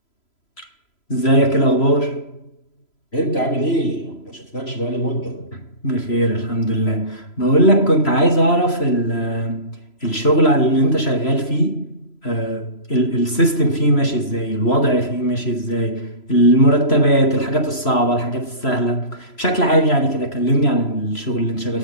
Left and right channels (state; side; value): late; right; 3.0 ms